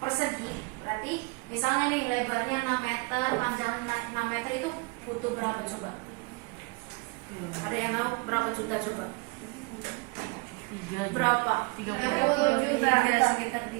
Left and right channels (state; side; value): quieter; left; 29.3 dB